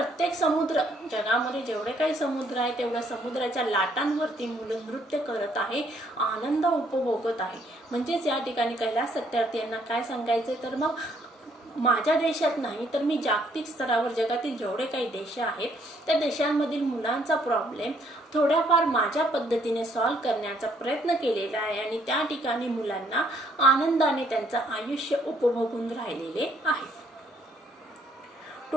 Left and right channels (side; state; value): both; normal; correlation 0.67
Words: समुद्र, जगामध्ये जेवढे काही समुद्र आहे तेवढ्या समुद्राच्या लाटांवरती मुलं नृत्य करत आहे, आनंद उपभोगत आहे. म्हणजेच या ठिकाणी कैलास सत्यार्थी यांना काय सांगायचं, तर मग माझ्या देशात नाही तर मी जागतिक स्तरावर जगातील जेवढे काही देश आहेत त्या देशांमधील मुलांचा प्रॉब्लेम थोड्याफार माझ्या पद्धतीने सॉल्व्ह करण्याचा प्रयत्न केलेला आहे आणि त्या ठिकाणी मुलांना आनंदाने त्यांचं आयुष्य उपभोगून राहिलेले आहे.